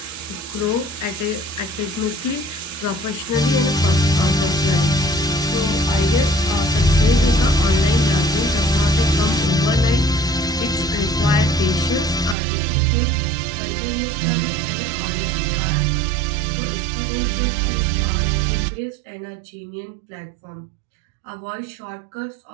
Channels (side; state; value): left; drops out; at 12.4 s